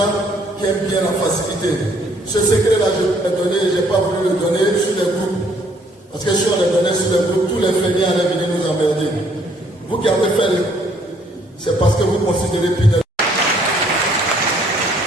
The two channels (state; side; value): normal; both; correlation 0.64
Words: qui aiment bien la facilité. Ce secret-là, je vais le donner, je n'ai pas voulu le donner sur les groupes. Parce que si on le donnait sur les groupes, tous les feignants allaient venir nous emmerder. Vous qui avez fait, c'est parce que vous considérez Pinel.